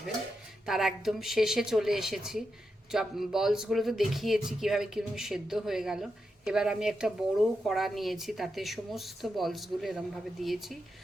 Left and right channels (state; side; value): normal; both; correlation 0.87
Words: তার একদম শেষে চলে এসেছি। বলসগুলো তো দেখিয়েছি কীভাবে কীরকম সেদ্ধ হয়ে গেল। এবার আমি একটা বড় কড়া নিয়েছি, তাতে সমস্ত বলসগুলো এরমভাবে দিয়েছি।